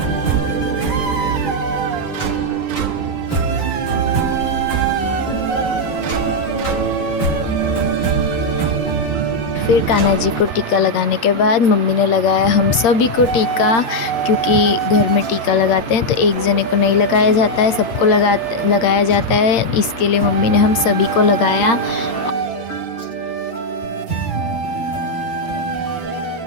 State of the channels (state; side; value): late; right; 8.7 ms